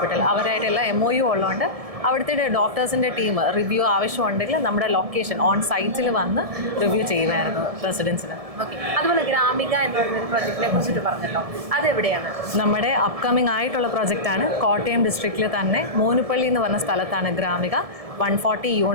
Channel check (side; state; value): left; late; 1.7 ms